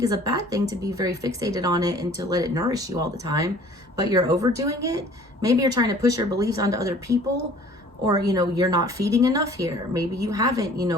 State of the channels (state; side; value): normal; both; correlation 0.51